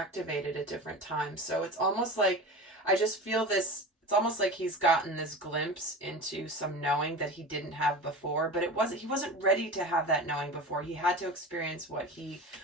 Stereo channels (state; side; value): normal; both; correlation 0.31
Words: at different times. So it's almost like, I just feel this, it's almost like he's gotten this glimpse into some knowing that he didn't have before, but he wasn't ready to have that knowing before. He had to experience what he